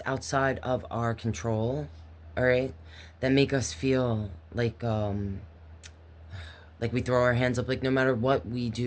outside of our control, all right, that make us feel like we throw our hands up, like no matter what we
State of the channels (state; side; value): identical; both; correlation 1.00